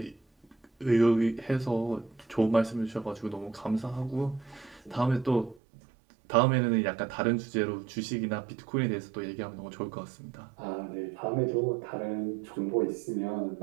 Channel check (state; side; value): drops out; left; at 5.6 s